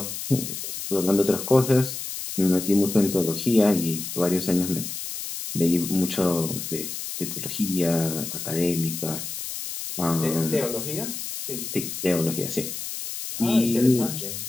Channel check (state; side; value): noise; left; hiss, 7 dB below the sound